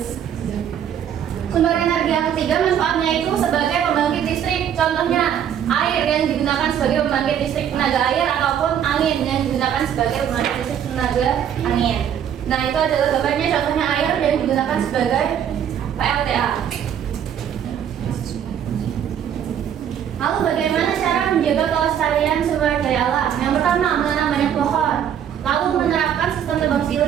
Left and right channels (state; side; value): quieter; left; 9.2 dB